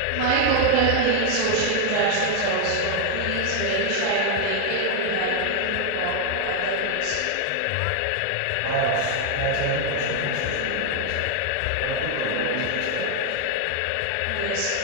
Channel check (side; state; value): both; different; correlation 0.00